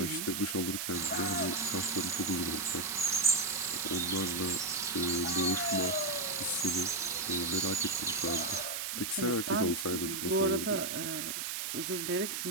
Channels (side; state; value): right; noise; hiss, 3 dB below the sound